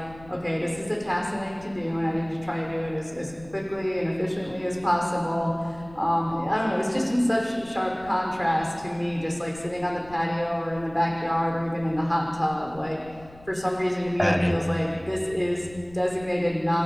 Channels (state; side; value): noise; left; rumble, 21 dB below the sound